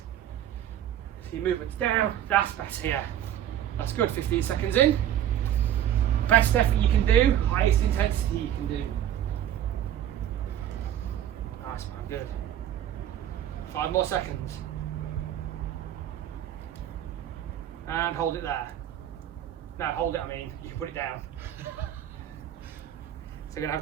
So your movement's down, that's better, yeah. That's good, 15 seconds in. Best effort you can do, highest intensity you can do. Nice man, good. 5 more seconds. And hold it there. No, hold it, I mean, you can put it down. So we're going to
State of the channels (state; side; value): quieter; left; 11.1 dB